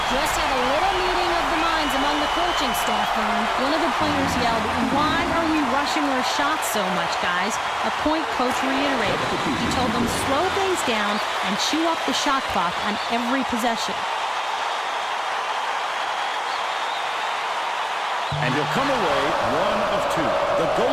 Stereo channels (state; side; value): identical; both; correlation 1.00